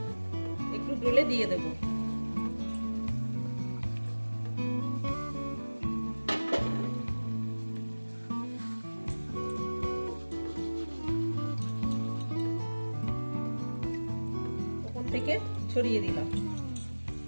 একটু ডলে দিয়ে দেব। ওপর থেকে ছড়িয়ে দিলাম।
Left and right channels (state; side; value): inverted; both; correlation -1.00